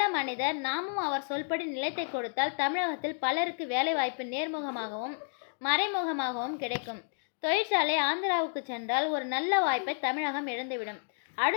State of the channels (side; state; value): right; silent; digital silence